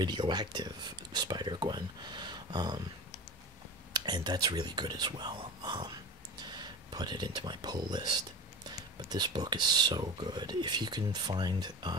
Spider-Gwen, and that's really good as well. Put it into my pull list. But this book is so good. If you can find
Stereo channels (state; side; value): normal; both; correlation 0.31